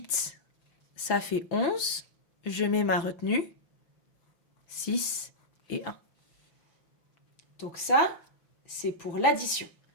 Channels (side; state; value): right; late; 6.0 ms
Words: ça fait 11. Je mets ma retenue. 6 et 1. Donc ça, c'est pour l'addition.